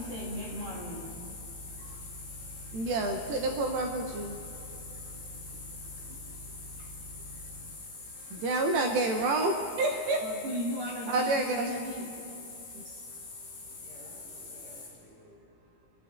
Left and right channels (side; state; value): left; late; 18 ms